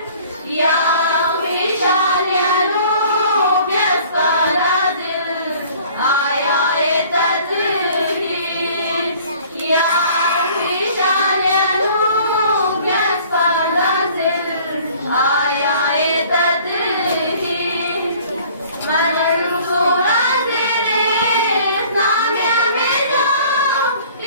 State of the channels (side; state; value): both; inverted; correlation -0.52